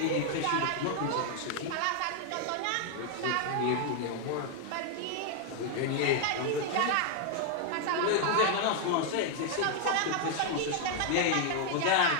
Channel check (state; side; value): different; both; correlation 0.00